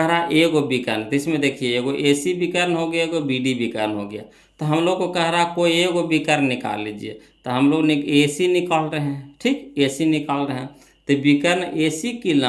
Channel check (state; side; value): identical; both; correlation 1.00